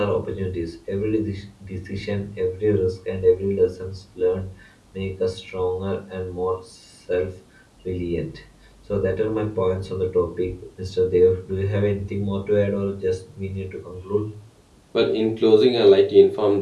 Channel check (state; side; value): identical; both; correlation 1.00